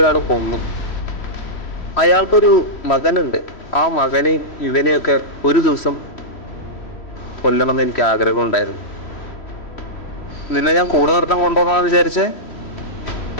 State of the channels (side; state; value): right; late; 3.1 ms